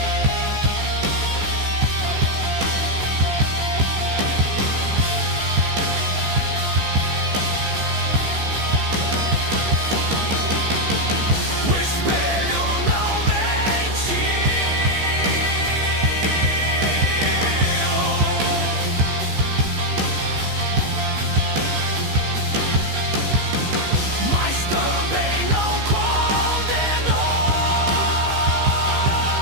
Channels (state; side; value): late; left; 15 ms